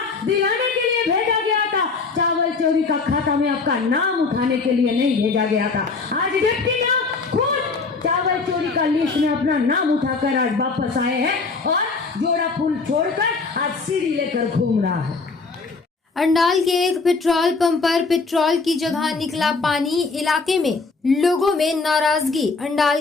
दिलाने के लिए भेजा गया था। चावल चोरी का खाता में आपका नाम उठाने के लिए नहीं भेजा गया था। आज डिप्टी मेयर खुद चावल चोरी का लिस्ट में अपना नाम उठाकर आज वापस आए हैं, और जोड़ा फूल छोड़कर आज सीढ़ी लेकर घूम रहा है। अंडाल के एक पेट्रोल पंप पर पेट्रोल की जगह निकला पानी, इलाके में लोगों में नाराजगी।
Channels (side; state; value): right; quieter; 4.3 dB